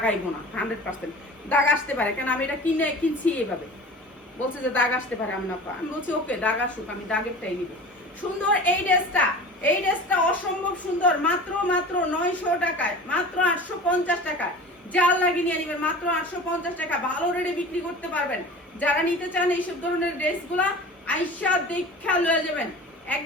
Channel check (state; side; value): normal; both; correlation 0.38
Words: আইব না, 100% দাগ আসতে পারে, কারণ আমি এটা কিনছি এইভাবে। বলছে যে দাগ আসতে পারে, আমি বলছি ওকে দাগ আসুক, আমি দাগেরটাই নিব। সুন্দর এই ড্রেসটা অসম্ভব সুন্দর। মাত্র 900 টাকায়, মাত্র 850 টাকায়। জাল লাগিয়ে নিয়ে নেবেন, মাত্র 850 টাকা। ভালো রেটে বিক্রি করতে পারবেন। যারা নিতে চান এইসব ধরনের ড্রেসগুলা, আইসা দেখা লয়ে যাবেন,